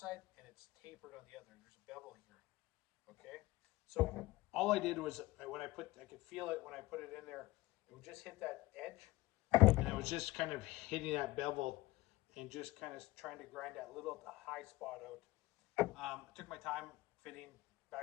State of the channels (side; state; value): right; quieter; 18.9 dB